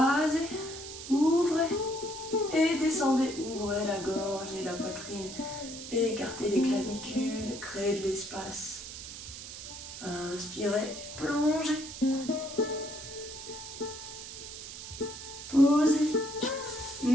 ouvrez et descendez. Ouvrez la gorge et la poitrine. Écartez les clavicules, créez de l'espace. Inspirez, plongez. Posez.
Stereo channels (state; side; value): noise; right; hiss, 11 dB below the sound